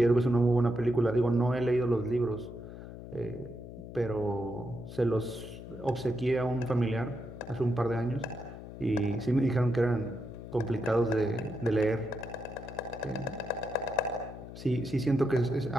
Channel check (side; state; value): left; noise; hum, 12 dB below the sound